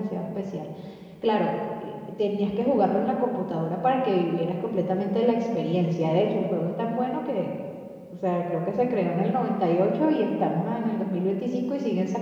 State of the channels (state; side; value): identical; both; correlation 1.00